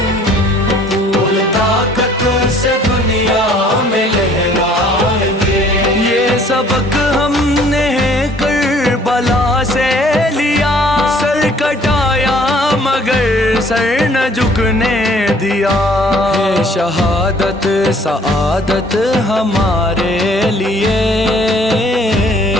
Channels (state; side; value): normal; both; correlation 0.58